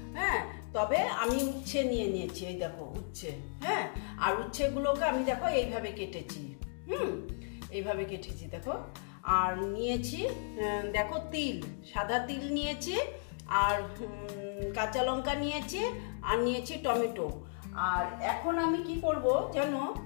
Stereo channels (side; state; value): right; silent; digital silence